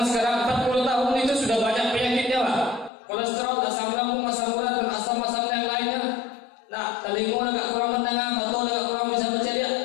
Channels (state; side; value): drops out; right; at 2.9 s